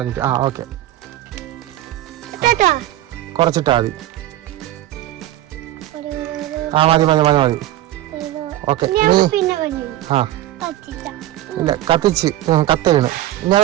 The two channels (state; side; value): quieter; left; 14.3 dB